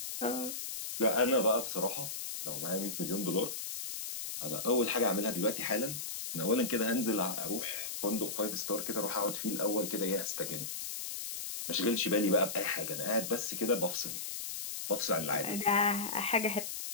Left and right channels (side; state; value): left; noise; hiss, 5 dB below the sound